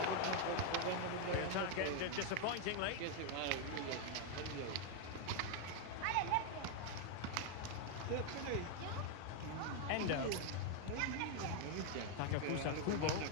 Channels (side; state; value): both; different; correlation 0.01